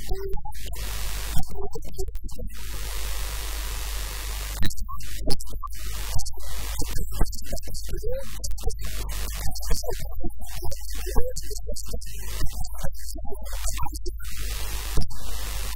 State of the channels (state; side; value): identical; both; correlation 1.00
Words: n'est pliée à tous les 5 ans. Avant, 5 ans, l'île commence par Grande Comore, 5 ans, un président obligé sur de la Grande Comore, après 5 ans, un président obligé sur de Anjouan, et